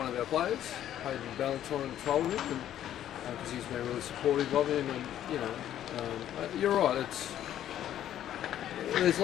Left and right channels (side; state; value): right; quieter; 11.4 dB